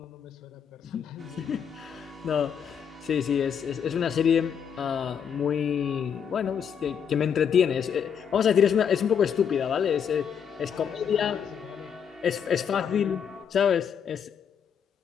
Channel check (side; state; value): right; quieter; 7.6 dB